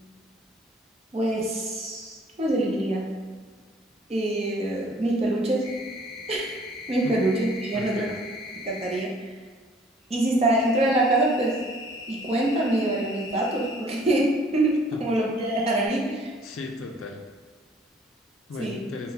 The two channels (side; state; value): both; normal; correlation 0.57